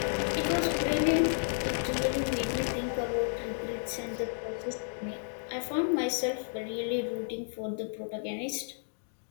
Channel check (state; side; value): silent; right; digital silence